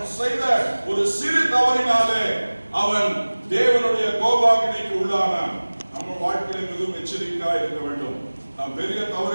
செய்த ஒரு சிறு தவறினாலே அவன் தேவனுடைய கோபாக்கினைக்கு உள்ளானான். நம்ம வாழ்க்கையில் மிகவும் எச்சரிக்கையாக இருக்க வேண்டும். நாம் பெரிய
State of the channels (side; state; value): both; inverted; correlation -1.00